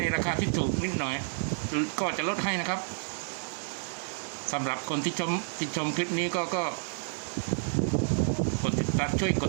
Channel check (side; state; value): left; silent; digital silence